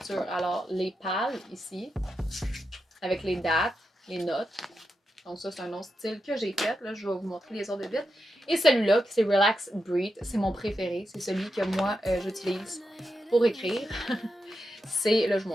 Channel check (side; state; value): both; normal; correlation 0.87